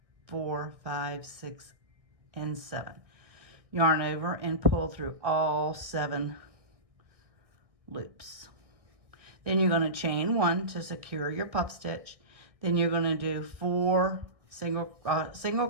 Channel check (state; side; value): late; left; 1.6 ms